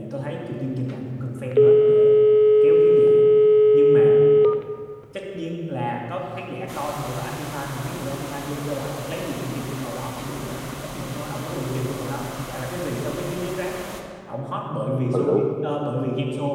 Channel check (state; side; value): identical; both; correlation 1.00